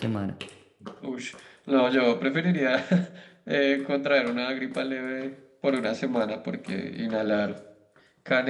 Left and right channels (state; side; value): identical; both; correlation 1.00